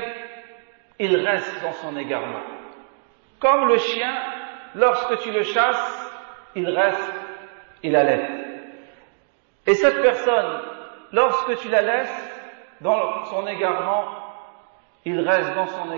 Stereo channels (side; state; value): left; silent; digital silence